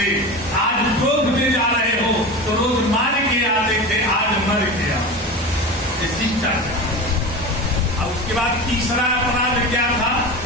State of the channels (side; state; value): both; normal; correlation 0.28